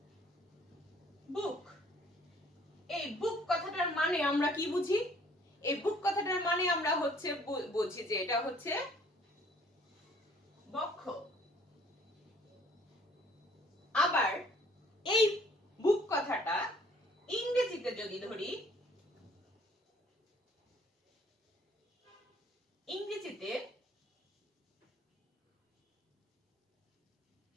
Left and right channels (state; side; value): normal; both; correlation 0.59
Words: বুক, এই বুক কথাটার মানে আমরা কি বুঝি? এই বুক কথাটার মানে আমরা হচ্ছে বুঝি যে এটা হচ্ছে বক্ষ। আবার এই বুক কথাটা ইংরেজিতে যদি ধরি,